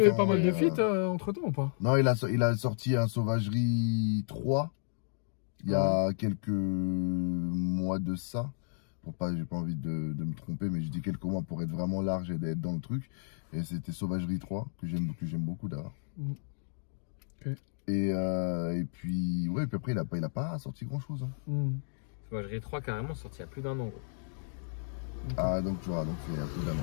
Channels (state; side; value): silent; right; digital silence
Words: pas mal de feats entre temps ou pas? Non, il a sorti un Sauvagerie 3 il y a quelques mois de ça. J'ai pas envie de me tromper, mais je dis quelques mois pour être vraiment large et d'être dans le truc. Et c'était Sauvagerie 3 que j'aime beaucoup d'ailleurs. Okay. Et puis après il a pas sorti grand chose. Hein. Sauvagerie 3 carrément sorti il y a plus d'1 an. Gros. Ah donc tu vois, donc il y a plus d'1